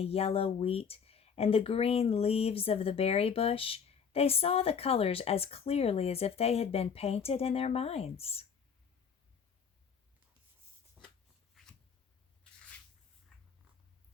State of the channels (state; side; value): quieter; right; 6.6 dB